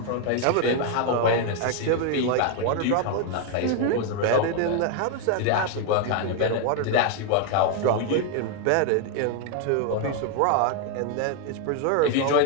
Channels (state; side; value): different; both; correlation 0.00